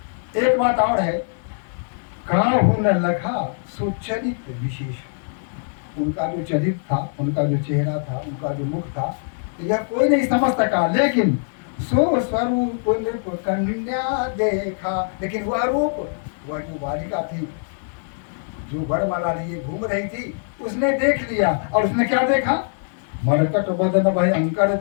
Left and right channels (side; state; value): right; silent; 64 dB below the other